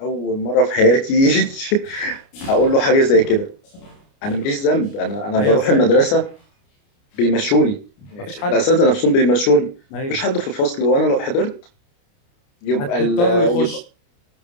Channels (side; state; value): right; late; 29 ms